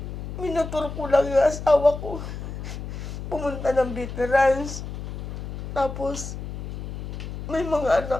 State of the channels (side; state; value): left; noise; hum, 7 dB below the sound